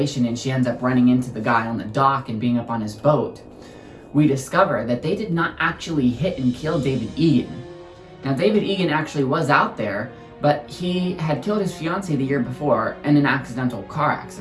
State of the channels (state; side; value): identical; both; correlation 1.00